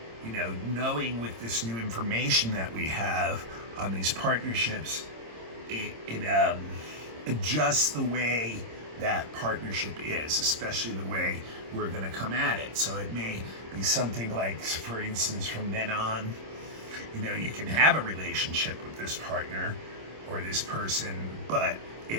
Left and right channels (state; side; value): late; left; 26 ms